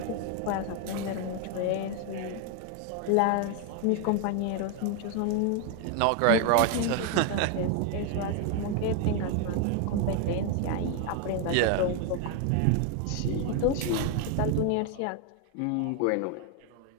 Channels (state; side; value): different; both; correlation 0.01